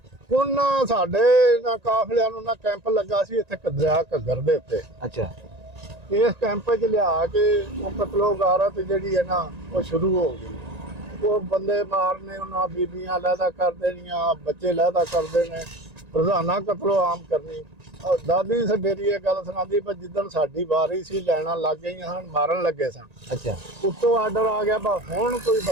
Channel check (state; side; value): late; left; 1.9 ms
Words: ਉਹਨਾਂ ਸਾਡੇ ਨਾ ਕਾਫਲਿਆਂ ਨੂੰ ਨਾ ਕੈਂਪ ਲੱਗਾ ਸੀ ਇੱਥੇ ਦਰਿਆ ਘੱਗਰ ਦੇ ਉੱਤੇ। ਅੱਛਾ। ਇਸ ਕੈਂਪ 'ਚ ਲਿਆ ਕੇ ਉਹ ਕਤਲੋ ਗਾਰਤ ਜਿਹੜੀ ਹੈ ਨਾ ਉਹ ਸ਼ੁਰੂ ਹੋ ਗਈ। ਉਹ ਬੰਦੇ ਮਾਰਨੇ, ਉਹਨਾਂ ਬੀਬੀਆਂ ਲਹਿਦਾ ਕਰ ਦੇਣੀਆਂ, ਬੱਚੇ ਲਹਿਦਾ ਕਰਦੇ ਨੇ, ਰੋਜ਼ਾਨਾ ਕਤਲੋ ਆਮ ਕਰਨੀ। ਦਾਦੀ ਮੇਰੀ ਇਹ ਗੱਲ ਸੁਣਾਉਂਦੀ, ਪਰ ਜਿੱਦਣ ਸਾਡੀ ਵਾਰੀ ਸੀ ਲੈਣਾ ਲੱਗ ਗਈਆਂ ਹਨ, ਮਾਰਨ ਲੱਗੇ ਸਨ। ਅੱਛਾ। ਉੱਤੋਂ ਆਰਡਰ ਆ ਗਿਆ ਬਾ ਹੁਣ ਕੋਈ